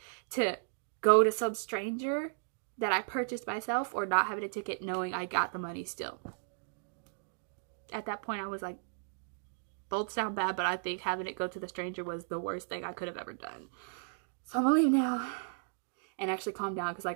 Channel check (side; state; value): left; silent; digital silence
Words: to go to some stranger that I purchased myself, or not having a ticket knowing I got the money still. At that point, I was like, both sound bad, but I think having it go to the stranger was the worst thing I could have ever done. So I'm gonna leave now and actually calm down, because